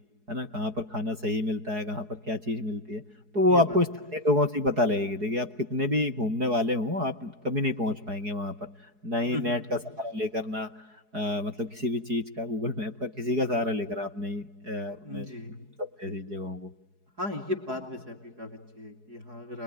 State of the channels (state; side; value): late; left; 4.7 ms